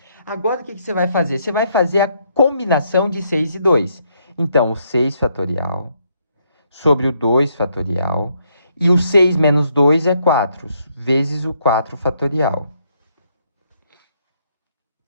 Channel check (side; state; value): both; inverted; correlation -0.73